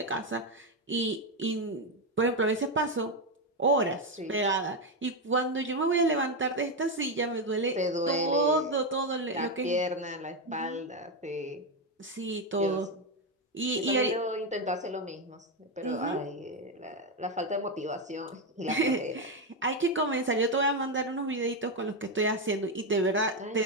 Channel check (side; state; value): both; normal; correlation 0.07